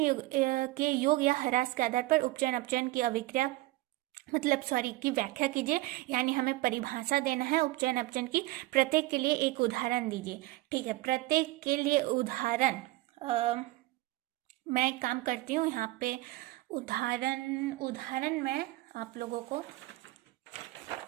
के योग या ह्रास के आधार पर उपचयन अपचयन की अभिक्रिया की व्याख्या कीजिए, यानी हमें परिभाषा देना है उपचयन अपचयन की। प्रत्येक के लिए एक उदाहरण दीजिए। ठीक है, प्रत्येक के लिए उदाहरण मैं काम करती हूँ यहाँ पे। उदाहरण मैं आप लोगों को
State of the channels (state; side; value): quieter; left; 18.9 dB